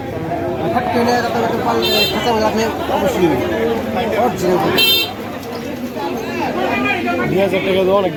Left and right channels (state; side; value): identical; both; correlation 1.00